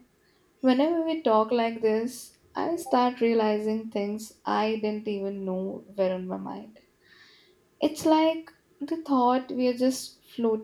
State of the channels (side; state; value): both; identical; correlation 1.00